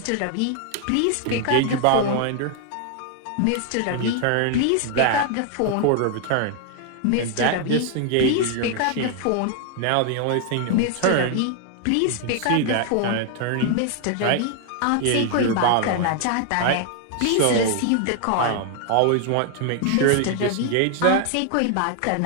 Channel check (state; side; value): different; both; correlation 0.00